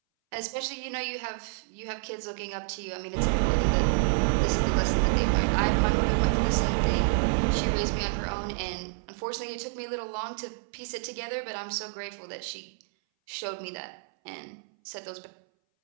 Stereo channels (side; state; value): left; silent; 59 dB below the other